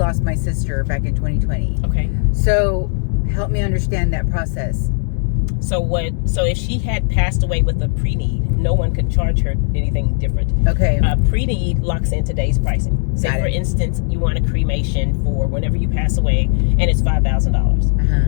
my sister back in 2020. Okay. So help me understand that process. So if she had passed away with a pre-need, no one could charge her anything different. Okay. Pre-need locks in today's pricing. Say, for instance, you want a cremation for whenever you pass away, and it's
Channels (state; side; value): silent; right; 61 dB below the other